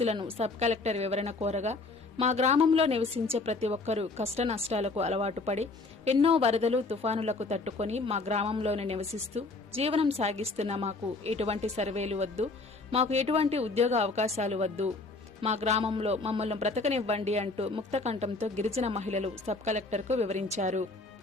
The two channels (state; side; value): quieter; right; 3.5 dB